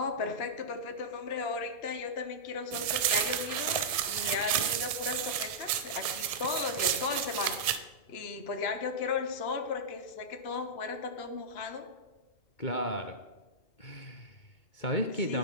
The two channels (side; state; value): right; late; 1.7 ms